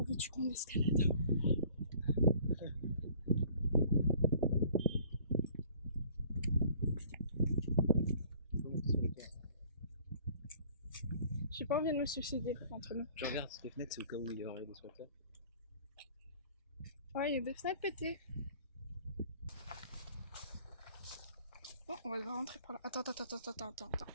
veux-tu qu'on escalade? J'ai pas envie de me suicider entre nous. Je regarde toutes les fenêtres, c'est au cas où il y aurait des squatters. Ouais, il y a des fenêtres pétées. Bon, on va devoir rentrer par là. Attends.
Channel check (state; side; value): inverted; both; correlation -0.54